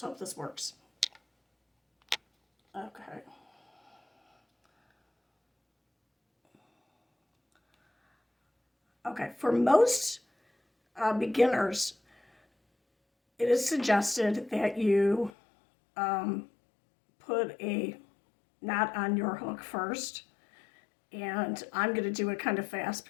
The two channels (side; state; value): right; drops out; at 15.3 s